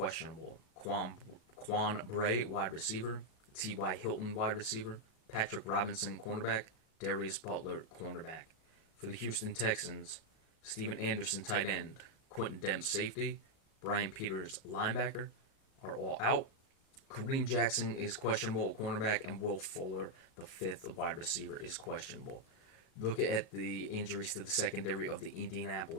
Quan Bray, wide receiver. T.Y. Hilton, wide receiver. Patrick Robinson, cornerback. Darius Butler, cornerback. For the Houston Texans, Steven Anderson, tight end. Quentin Demps, safety. Brian Peters, linebacker, are all out. Kareem Jackson is questionable, cornerback, and Will Fuller, the fifth wide receiver, is questionable. Look at the injuries to the secondary of the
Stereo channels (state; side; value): late; right; 37 ms